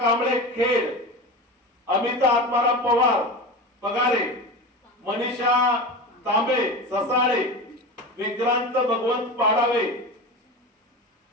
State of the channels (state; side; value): normal; both; correlation 0.27